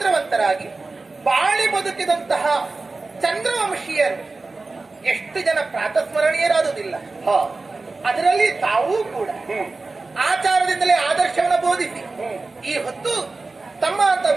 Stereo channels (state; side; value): quieter; left; 3.6 dB